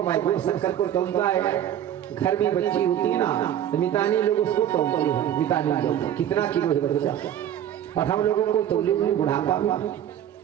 भाई गुड़ शक्कर को तौलता है। घर में बच्ची होती है ना तो मितानी लोग उसको तौलते हैं मितानी लोग कितना किलो है बच्चा और हम लोगों को तौले में बुढ़ापा में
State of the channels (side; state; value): left; quieter; 10.7 dB